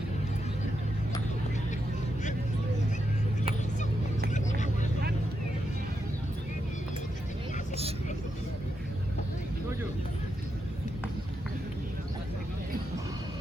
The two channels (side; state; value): both; normal; correlation 0.84